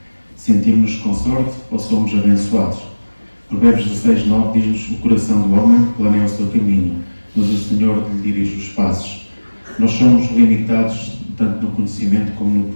Sentimos-nos com sorte ou somos abençoados? Provérbios 16:9 diz-nos: o coração do homem planeia o seu caminho, mas o Senhor lhe dirige os passos. Nós somos limitados tanto no conhecimento como no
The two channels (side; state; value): both; inverted; correlation -1.00